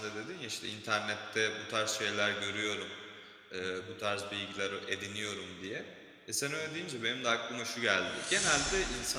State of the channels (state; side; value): identical; both; correlation 1.00